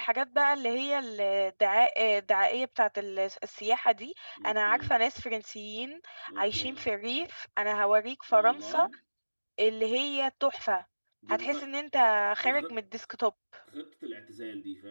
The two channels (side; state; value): both; inverted; correlation -1.00